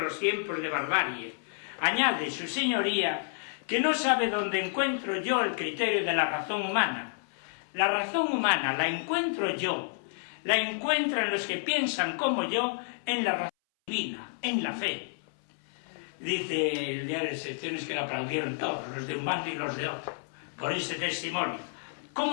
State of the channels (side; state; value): right; silent; 58 dB below the other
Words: los tiempos de barbarie. Añade su señoría que no sabe dónde encuentro yo el criterio de la razón humana. La razón humana la encuentro yo, la encuentran los que piensan como yo en la razón divina, en la fe. Dice el diario de secciones que lo aplaudieron todos, los de un bando y los de otro, por ese testimonio.